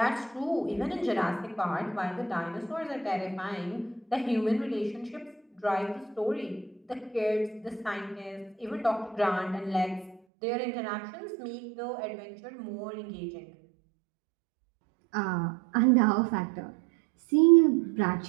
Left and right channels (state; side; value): drops out; left; at 10.2 s